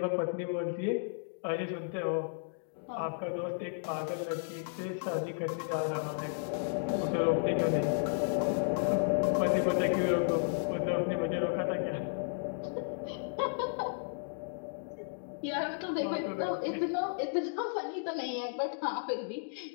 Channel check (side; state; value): right; silent; digital silence